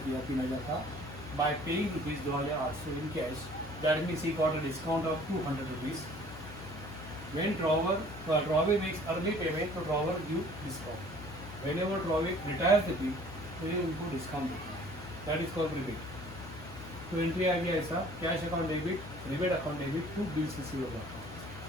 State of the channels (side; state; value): left; noise; hum, 13 dB below the sound